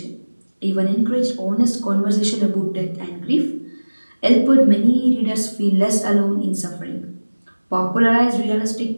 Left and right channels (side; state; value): both; inverted; correlation -1.00